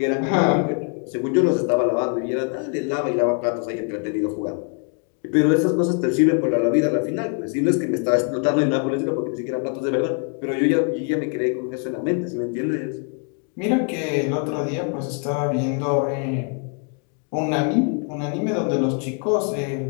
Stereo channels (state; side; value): quieter; right; 39.6 dB